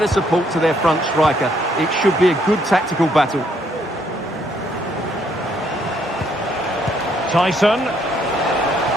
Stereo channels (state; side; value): normal; both; correlation 0.69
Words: support to their front striker. It should be a good tactical battle. Tyson.